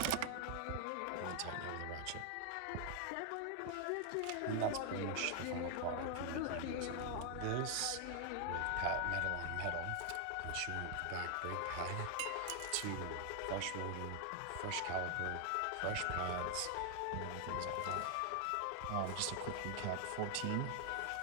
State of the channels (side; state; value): both; different; correlation 0.00